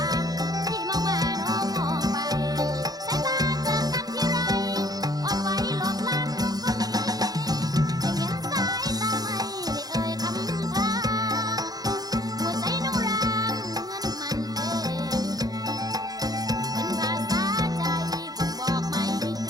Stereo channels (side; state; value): left; late; 0.19 ms